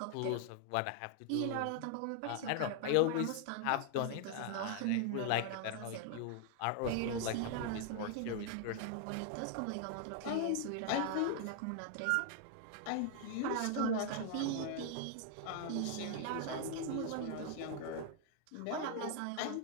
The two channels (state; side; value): different; both; correlation 0.00